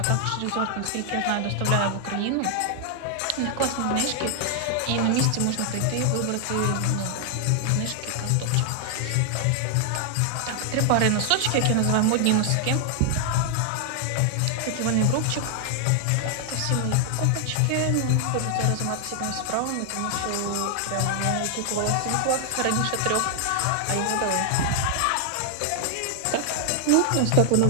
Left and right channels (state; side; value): different; both; correlation 0.00